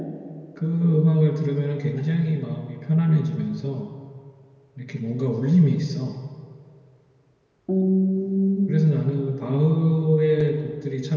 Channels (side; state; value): both; identical; correlation 1.00